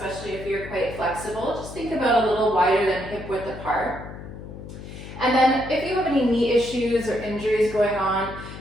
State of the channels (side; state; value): left; noise; hum, 12 dB below the sound